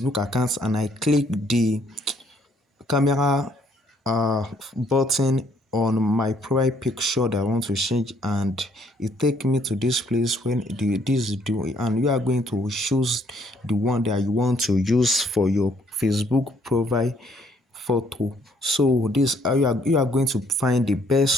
account and I click the camera button on my profile picture that I want to change, and it take me to this place when this do, and you are going to choose the one that you want to use for your Facebook profile photo. So this you are going to find the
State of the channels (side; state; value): both; normal; correlation 0.66